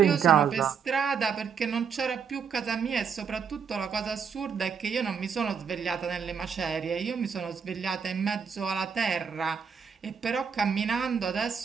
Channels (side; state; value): left; quieter; 6.6 dB